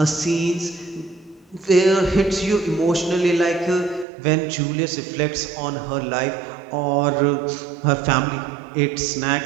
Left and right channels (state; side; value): drops out; left; at 4.0 s